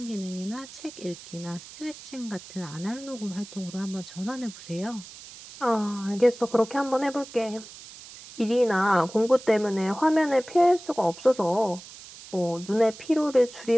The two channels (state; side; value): noise; right; hiss, 17 dB below the sound